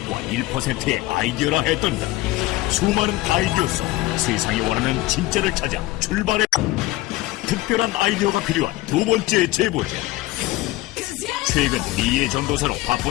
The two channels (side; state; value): right; quieter; 18.1 dB